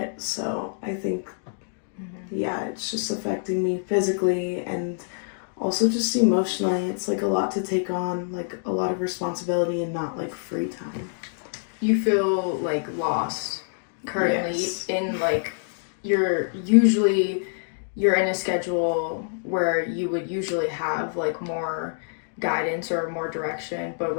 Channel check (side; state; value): right; silent; digital silence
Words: so I think yeah, it's just affecting me physically and also just emotionally. It's a lot to take on, a lot of responsibility and not free time. You feel lost currently. Yes. In you're in a schedule where you would usually have more guidance or more direction, but